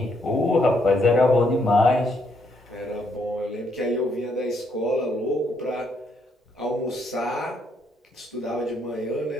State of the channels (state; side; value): normal; both; correlation 0.73